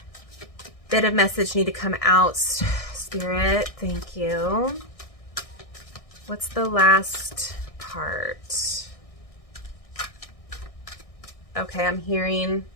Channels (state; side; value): late; right; 1.6 ms